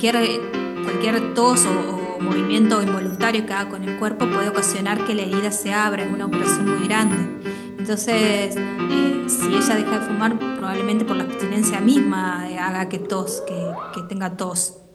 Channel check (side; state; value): both; identical; correlation 1.00